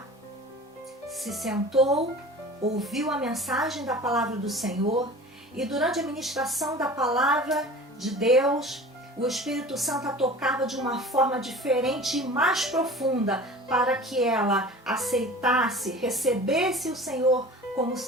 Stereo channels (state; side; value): normal; both; correlation 0.40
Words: se sentou, ouviu a mensagem da palavra do Senhor, e durante a ministração da palavra de Deus, o Espírito Santo a tocava de uma forma diferente e mais profunda para que ela aceitasse, recebesse o Senhor como